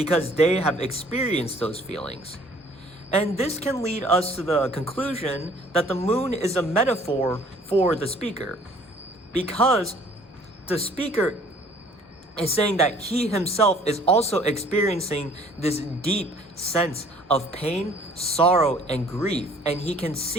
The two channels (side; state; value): both; normal; correlation 0.55